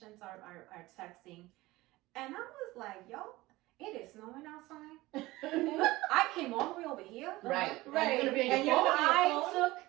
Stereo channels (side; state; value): left; quieter; 19.2 dB